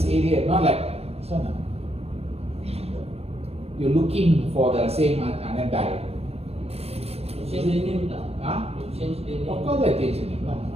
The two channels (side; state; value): left; late; 0.29 ms